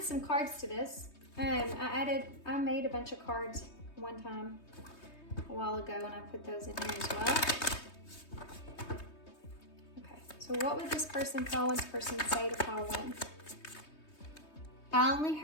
some cards to this. I made a bunch of cards one time a while ago, and I put those in here as well. Okay, so what would this pile one's person say to pile one? I only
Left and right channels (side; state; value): right; late; 3.2 ms